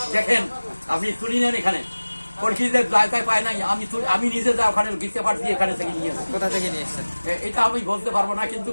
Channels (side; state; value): both; inverted; correlation -1.00